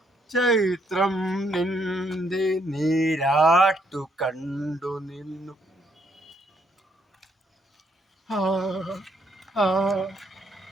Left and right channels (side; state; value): both; normal; correlation 0.72